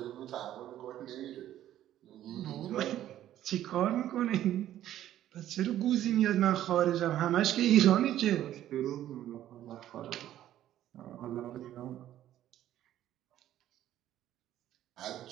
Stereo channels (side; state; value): left; quieter; 12.4 dB